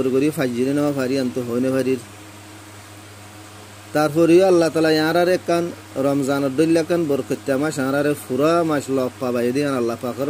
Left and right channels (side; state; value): both; identical; correlation 1.00